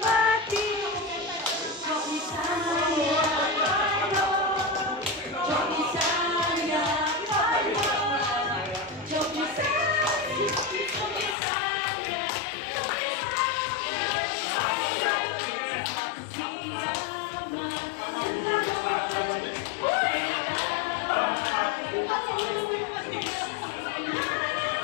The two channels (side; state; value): right; drops out; at 11.4 s